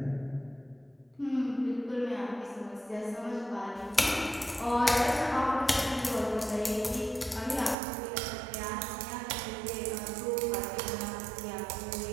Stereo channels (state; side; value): drops out; left; at 7.8 s